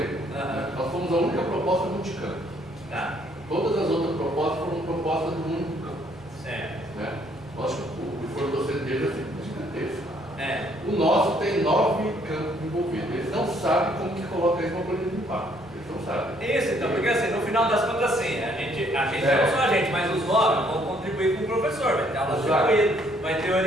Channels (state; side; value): noise; right; rumble, 24 dB below the sound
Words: nós fomos a única proposta multicampo. Tá. Todas as outras propostas foram propostas do único campo. Certo. Né? Lógico que o esforço docente deles é gigantesco. O O nosso tem 9 campos envolvidos. Eles não sabem como que coloca isso na planilha de impacto. Eles não sabem. Isso, então, porque assim, no final das contas, assim, a gente não só a gente, mas os 9 vão contribuir com o professor, vai ter aula distribuída, vai ter